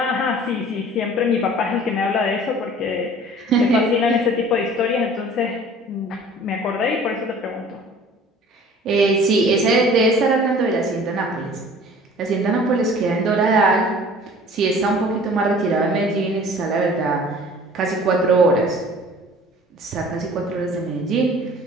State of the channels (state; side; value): normal; both; correlation 0.48